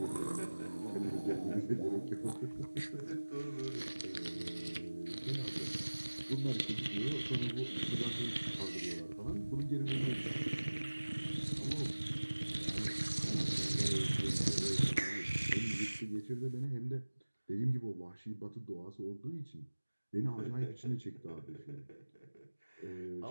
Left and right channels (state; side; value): inverted; both; correlation -1.00